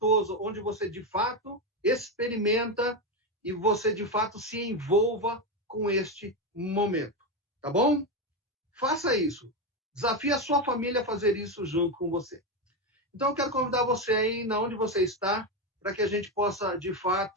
onde você de fato experimenta e você de fato se envolva com este momento, tá bom? Faça isso. Desafie a sua família a fazer isso junto com você. Então eu quero convidar você aí, na onde você está, para que a gente possa de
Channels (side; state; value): both; normal; correlation 0.11